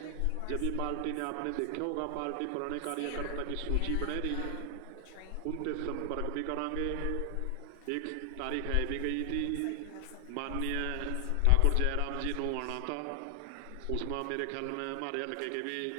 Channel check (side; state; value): both; different; correlation 0.00